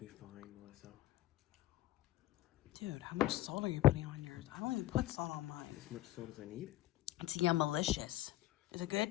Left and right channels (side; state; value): right; quieter; 15.1 dB